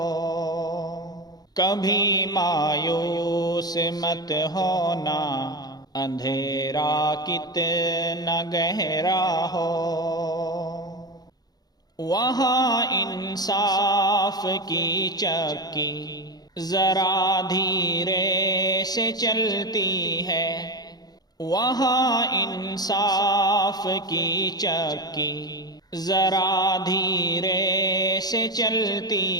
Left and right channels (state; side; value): late; right; 0.19 ms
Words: کبھی مایوس مت ہونا، اندھیرا کتنا گہرا ہو۔ وہاں انصاف کی چکی ذرا دھیرے سے چلتی ہے۔ وہاں انصاف کی چکی ذرا دھیرے سے